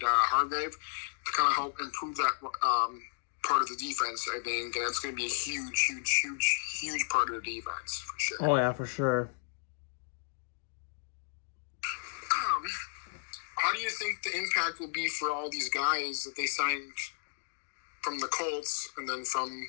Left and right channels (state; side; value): silent; right; 56 dB below the other